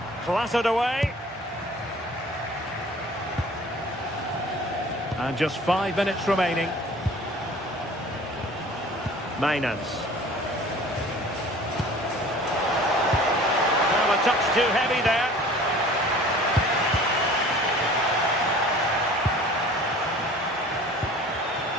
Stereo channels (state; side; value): normal; both; correlation 0.46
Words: Clattered away. And just 5 minutes remaining. Mainans. Well, a touch too heavy there.